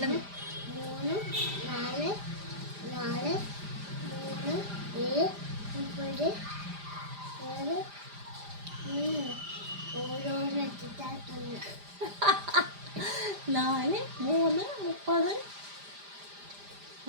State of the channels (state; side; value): late; left; 5.0 ms